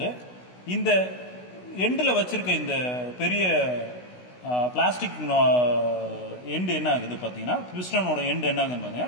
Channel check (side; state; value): right; late; 16 ms